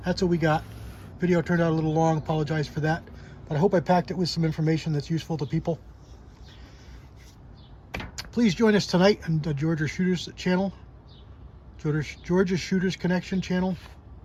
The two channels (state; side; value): identical; both; correlation 1.00